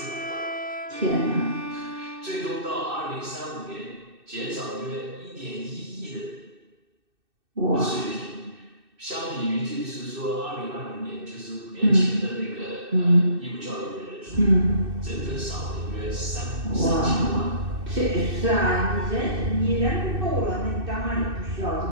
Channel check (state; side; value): late; left; 2.6 ms